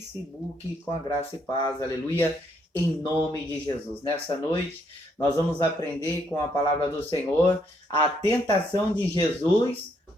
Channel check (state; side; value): normal; both; correlation 0.73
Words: com a graça e paz. Aleluia. Em nome de Jesus. Nessa noite, nós vamos aprender com a palavra do Senhor a tentação de Jesus